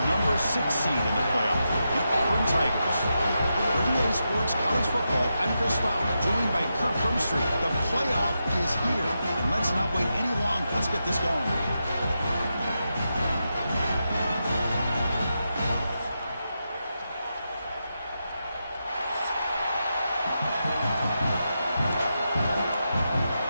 number 6 seed in the playoff, the Auburn Tigers. For EA Sports College Football, I'm Chris Fowler, joined by Kirk Hermstreet. The playoff is here, and let's not wait any longer. Let's get this going.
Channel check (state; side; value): inverted; both; correlation -0.87